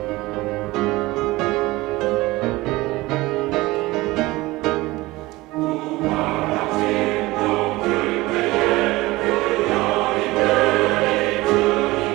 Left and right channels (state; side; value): quieter; left; 20.1 dB